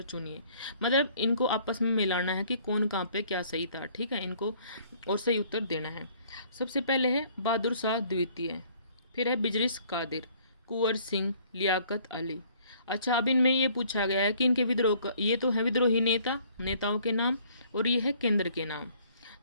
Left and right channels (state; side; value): inverted; both; correlation -0.59